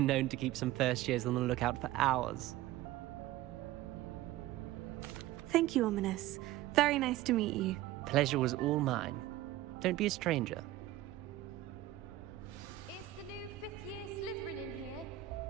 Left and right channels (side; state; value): left; quieter; 15.3 dB